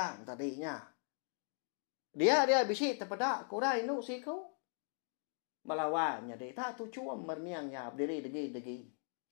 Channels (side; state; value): right; silent; 52 dB below the other